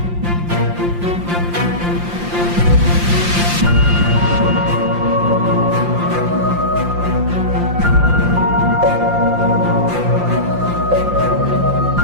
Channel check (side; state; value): left; late; 5.7 ms